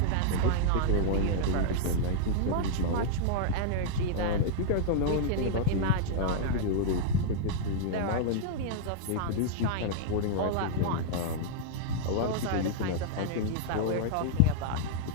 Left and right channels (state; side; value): different; both; correlation -0.01